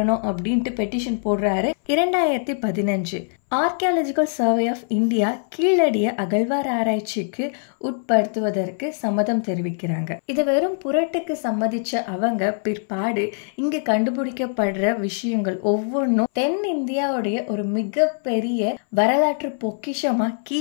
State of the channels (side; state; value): right; silent; 62 dB below the other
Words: அப்படின்ட்டு பெட்டிஷன் போடுறாரு. 2015 ஆர்கியாலஜிக்கல் சர்வே ஆஃப் இந்தியா கீழடிய அகழ்வார் ஆராய்ச்சிக்கு உட்படுத்துவதற்கு சம்மதம் தெரிவிக்கிறாங்க. இதை வெறும் புரட்டுக்கு சம்மதிச்ச அவங்க பிற்பாடு இங்க கண்டுபிடிக்கப்படுற விஷயங்கள் ஒவ்வொன்றும் தென் இந்தியாவுடைய ஒரு மிகப்பெரிய வரலாற்று பொக்கிஷமா